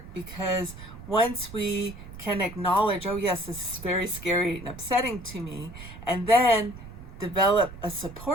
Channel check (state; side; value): noise; right; rumble, 14 dB below the sound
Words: because once we can acknowledge, oh yes, this is very scary and upsetting to me, and then develop a